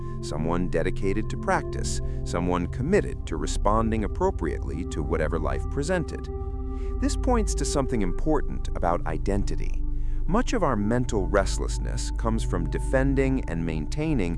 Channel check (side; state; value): both; identical; correlation 1.00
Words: someone dedicated to practice, someone committed to responding appropriately to whatever life presented. This points to something important about identity. Much of our mental restlessness comes from defending and